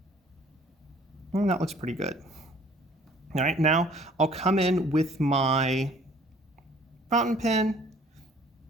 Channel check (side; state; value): both; normal; correlation 0.55